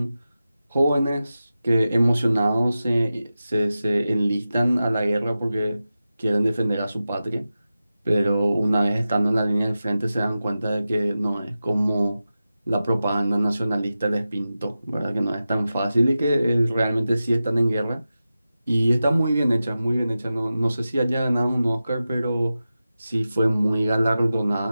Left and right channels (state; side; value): inverted; both; correlation -0.93